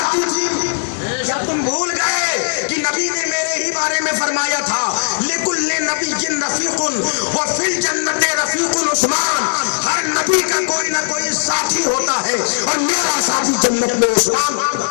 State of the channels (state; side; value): silent; right; 68 dB below the other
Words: دی تھی؟ کیا تم بھول گئے کہ نبی نے میرے ہی بارے میں فرمایا تھا لِكُلِّ نَبِيٍّ رَفِيقٌ وَفِي الْجَنَّةِ رَفِيقٌ عثمان، ہر نبی کا کوئی نہ کوئی ساتھی ہوتا ہے اور میرا ساتھی جنت میں عثمان ہوگا۔